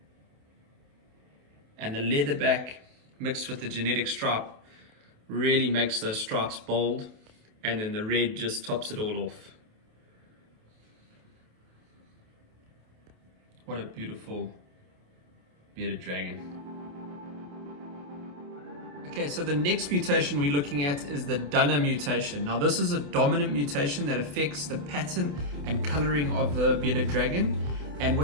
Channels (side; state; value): left; late; 28 ms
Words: And the leatherback mixed with the genetic stripe really makes those stripes bold. And then the red just tops it all off. What a beautiful bearded dragon. Okay, so the next mutation we're looking at is the Dunner mutation. Now this is a dominant mutation that affects the pattern and coloring of the bearded dragon. And